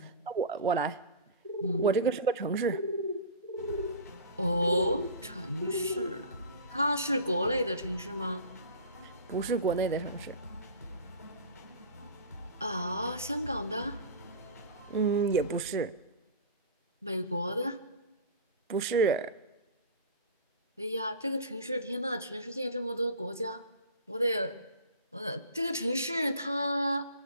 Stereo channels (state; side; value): inverted; both; correlation -0.35